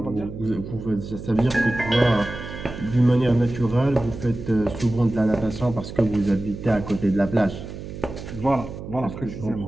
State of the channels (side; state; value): right; noise; hum, 10 dB below the sound